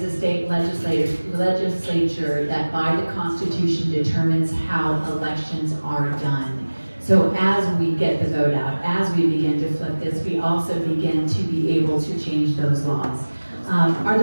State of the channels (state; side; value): inverted; both; correlation -1.00